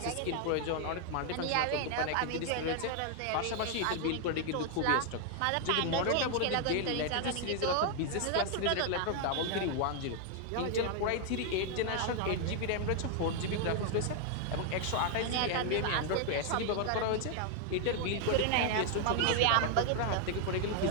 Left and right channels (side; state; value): both; different; correlation 0.00